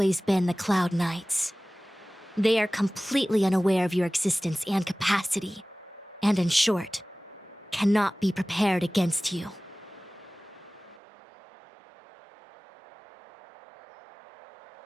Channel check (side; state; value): left; drops out; at 11.0 s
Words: been the Cloud Knights. They are completely unaware of your existence and capacity, and in short, cannot be prepared against you.